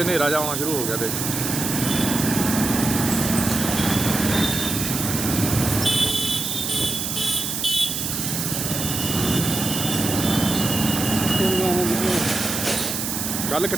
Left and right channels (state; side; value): noise; right; hiss, 3 dB below the sound